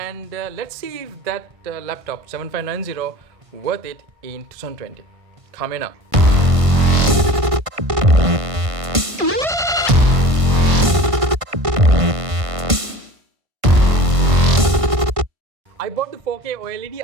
let's see if that laptop 7590 worth it in 2020. Coming up. I bought the 4K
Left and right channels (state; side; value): late; left; 1.5 ms